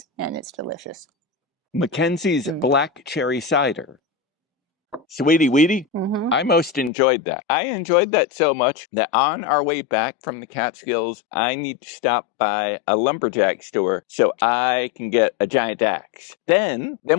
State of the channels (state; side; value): drops out; right; at 6.9 s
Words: and it's delicious. McKenzie's black cherry cider. Sweetie Weetie, I most enjoyed that. I enjoyed that so much that on our way back from the Catskills, I need to stop by a lumberjack store so I can get a giant axe. Then